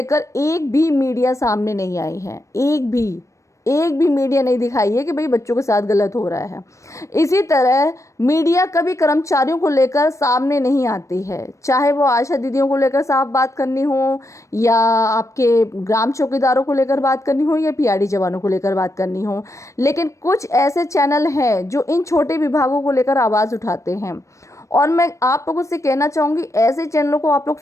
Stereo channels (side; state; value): right; late; 0.15 ms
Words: एक भी मीडिया सामने नहीं आई है, एक भी मीडिया नहीं दिखाई है कि भाई बच्चों के साथ गलत हो रहा है। इसी तरह मीडिया कभी कर्मचारियों को लेकर सामने नहीं आती है, चाहे वो आशा दीदियों को लेकर साफ बात करनी हो, या आपके ग्राम चौकीदारों को लेकर बात करनी हो, या पीआरडी जवानों को लेकर बात करनी हो। लेकिन कुछ ऐसे चैनल हैं जो इन छोटे विभागों को लेकर आवाज़ उठाते हैं, और मैं आप लोगों से कहना चाहूँगी ऐसे चैनलों को आप लोग